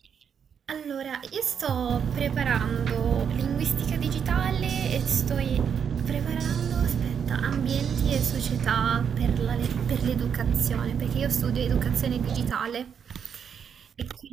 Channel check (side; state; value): left; quieter; 7.5 dB